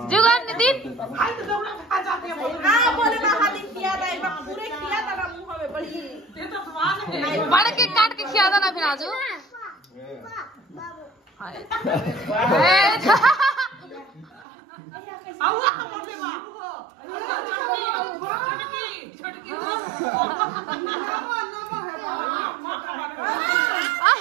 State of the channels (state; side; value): drops out; left; at 14.5 s